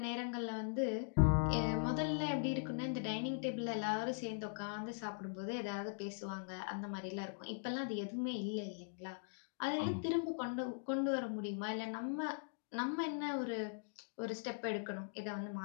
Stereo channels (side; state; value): right; silent; digital silence